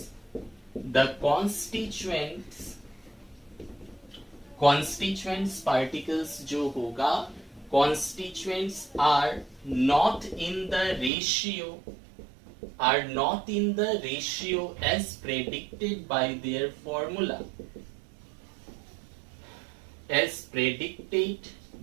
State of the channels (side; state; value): left; drops out; at 11.1 s